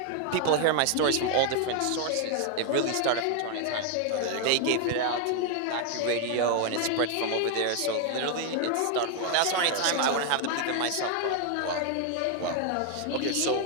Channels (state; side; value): different; both; correlation 0.00